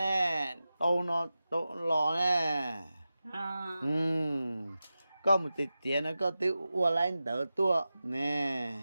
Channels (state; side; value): inverted; both; correlation -0.94